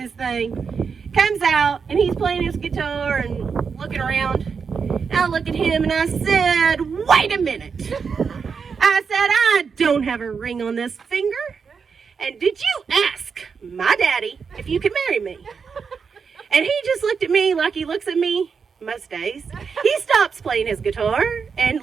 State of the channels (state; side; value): quieter; left; 5.8 dB